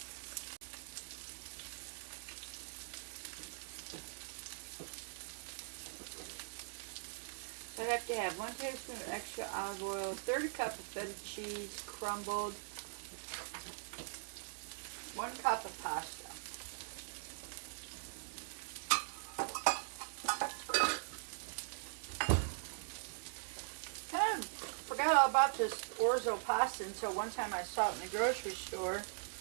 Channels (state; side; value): silent; left; digital silence